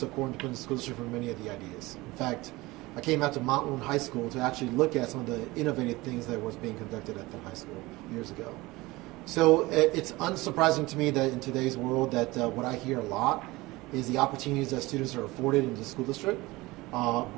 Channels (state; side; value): quieter; left; 20.8 dB